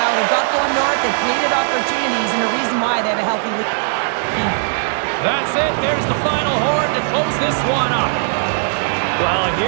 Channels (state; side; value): silent; left; 56 dB below the other